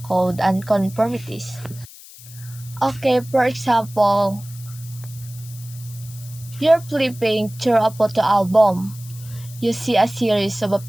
code and conformities. Okay, for example, you're flipping through a photo album. You see a series of a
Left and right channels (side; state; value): left; noise; hiss, 19 dB below the sound